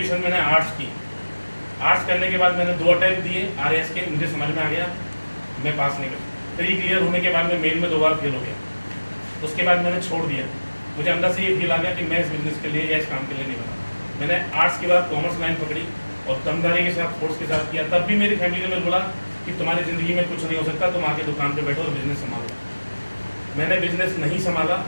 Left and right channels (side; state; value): both; inverted; correlation -1.00